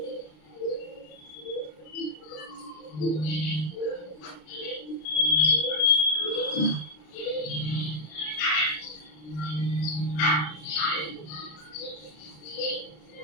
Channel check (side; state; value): right; late; 33 ms